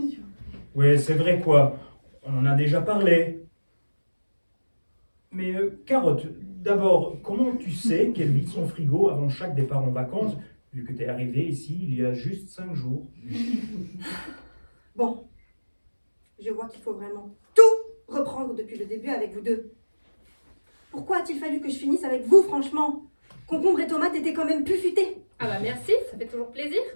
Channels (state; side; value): inverted; both; correlation -1.00